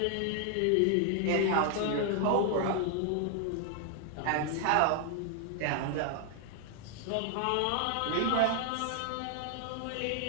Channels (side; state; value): both; different; correlation 0.00